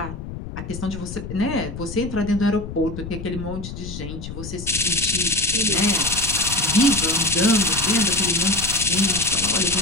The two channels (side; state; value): left; noise; rumble, 9 dB below the sound